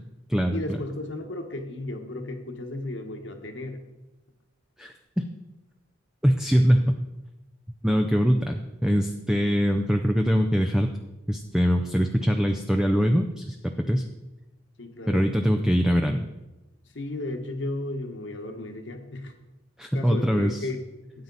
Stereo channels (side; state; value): both; normal; correlation 0.94